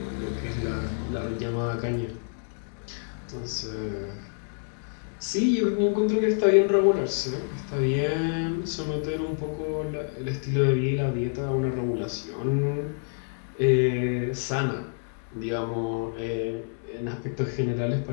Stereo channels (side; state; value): right; silent; digital silence